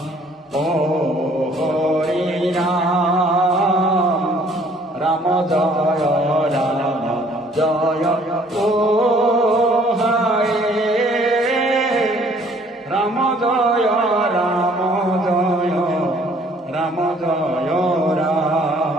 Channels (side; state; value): both; normal; correlation 0.59